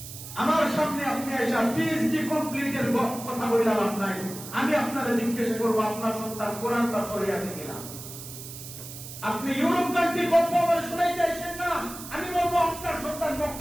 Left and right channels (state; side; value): noise; right; hiss, 12 dB below the sound